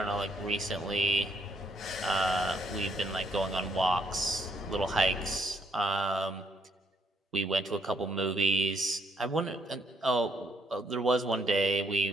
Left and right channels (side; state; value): both; normal; correlation 0.70